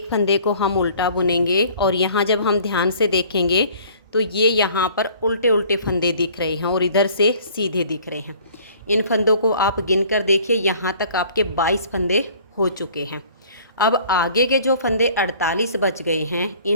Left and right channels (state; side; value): inverted; both; correlation -0.52